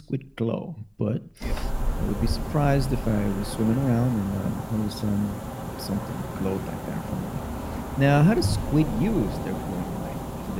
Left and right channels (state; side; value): identical; both; correlation 1.00